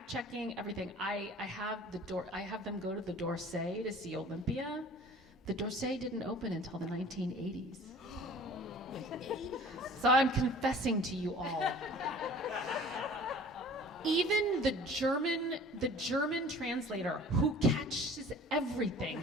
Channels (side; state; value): both; normal; correlation 0.46